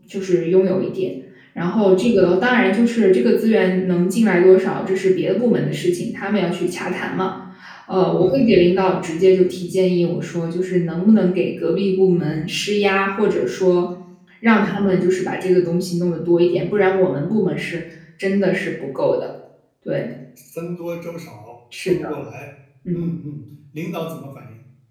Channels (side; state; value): both; identical; correlation 1.00